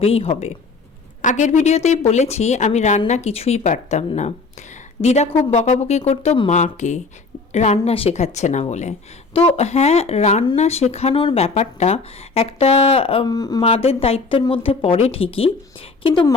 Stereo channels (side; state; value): right; quieter; 4.1 dB